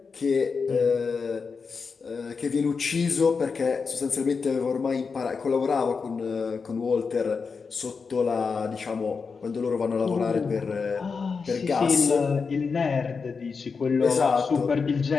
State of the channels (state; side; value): quieter; right; 5.1 dB